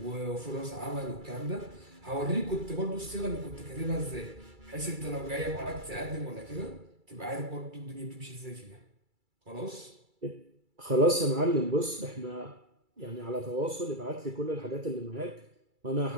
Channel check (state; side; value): late; left; 2.3 ms